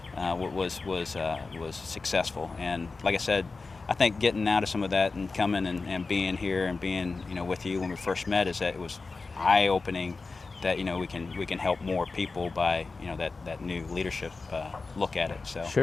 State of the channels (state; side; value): quieter; right; 4.0 dB